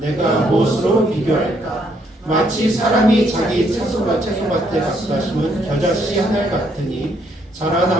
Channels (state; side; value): normal; both; correlation 0.71